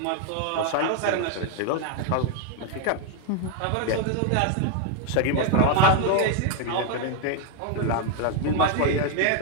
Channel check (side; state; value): both; different; correlation 0.01